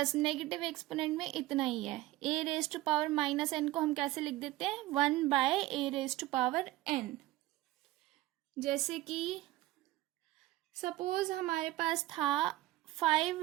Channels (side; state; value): left; quieter; 16.7 dB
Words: नेगेटिव एक्सपोनेंट में इतना ही है। a raise to power -n को हम कैसे लिख देते हैं, 1/a raise to power n। जैसे कि सपोज हमारे पास था 5